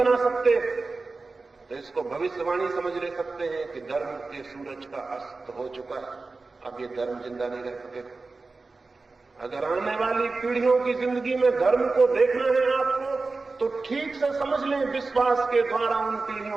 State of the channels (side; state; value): left; quieter; 3.8 dB